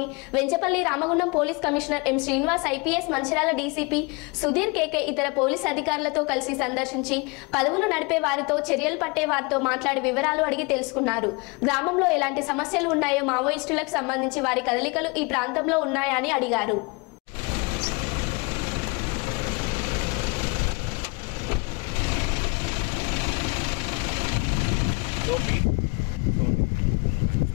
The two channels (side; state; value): right; quieter; 29.2 dB